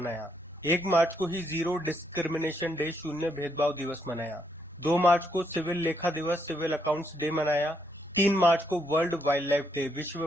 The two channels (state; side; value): normal; both; correlation 0.76